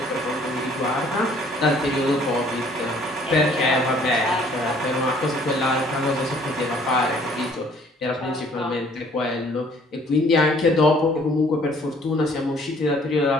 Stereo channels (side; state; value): both; normal; correlation 0.58